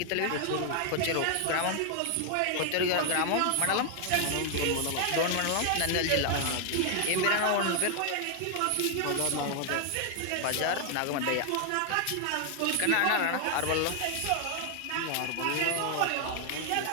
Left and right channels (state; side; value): different; both; correlation 0.00